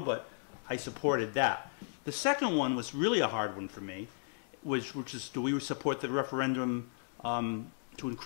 but I supported that. The second one was really a hard one for me, which is, do we support the referendum to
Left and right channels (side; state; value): right; silent; digital silence